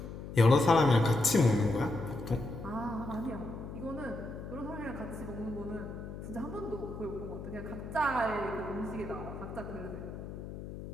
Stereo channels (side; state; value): left; noise; hum, 10 dB below the sound